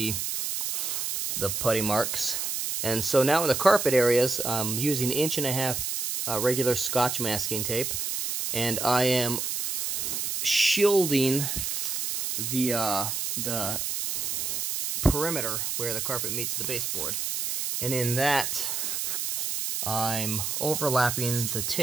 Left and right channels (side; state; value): right; noise; hiss, 2 dB below the sound